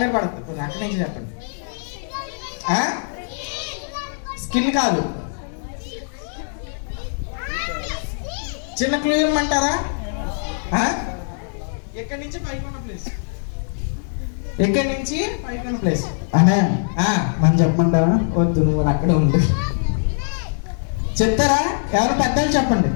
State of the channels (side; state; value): right; silent; 64 dB below the other